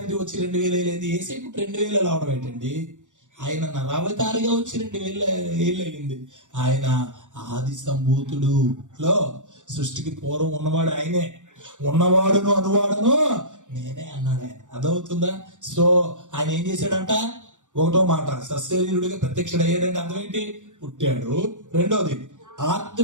వచ్చి 2000 అయింది. యేసయ్య పుట్టి 2000 అవడం ఏంటండి? ఆయన నరావతారిగా వచ్చి 2000 ఏళ్ళు అయింది. ఆయన ఆది సంభూతుడు సృష్టికి పూర్వం ఉన్నవాడు ఆయనే. ఉన్నవాడును అనువాడును నేనే అన్నాడు ఆయన. అర్థమవుతుందా? సో ఆయన ఏం చేశాడంట? ఒకటో మాట, సశరీరుడిగా ప్రత్యక్షుడయ్యాడంటే అర్థం ఏంటి? పుట్టాడు. రెండోది,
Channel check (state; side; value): late; left; 0.86 ms